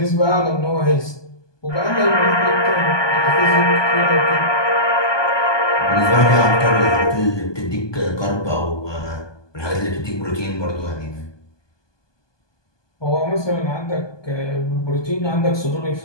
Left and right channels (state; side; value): late; right; 1.2 ms